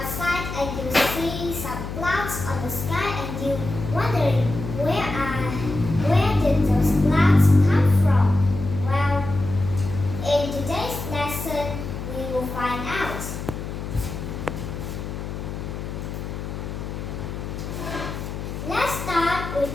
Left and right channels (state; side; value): noise; left; hum, 7 dB below the sound